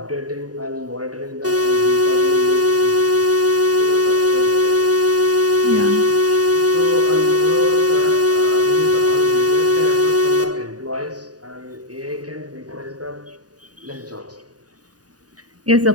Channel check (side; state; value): left; late; 0.68 ms